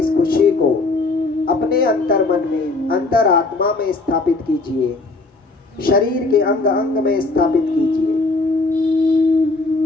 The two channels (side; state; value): right; quieter; 3.4 dB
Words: खुशी को अपने अंतर मन में, अंतर आत्मा में स्थापित कीजिए। शरीर के अंग अंग में स्थापित कीजिए।